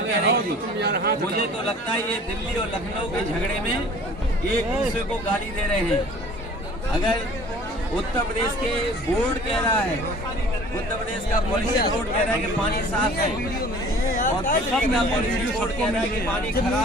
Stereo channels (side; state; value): both; normal; correlation 0.48